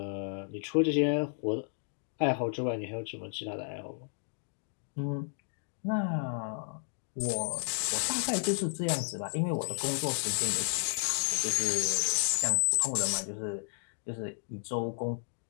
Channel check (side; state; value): right; silent; digital silence